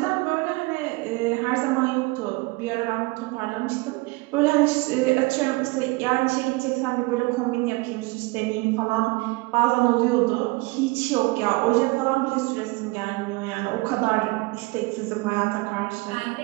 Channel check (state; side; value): quieter; left; 24.4 dB